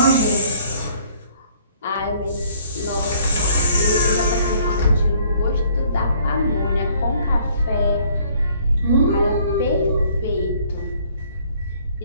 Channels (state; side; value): inverted; both; correlation -0.60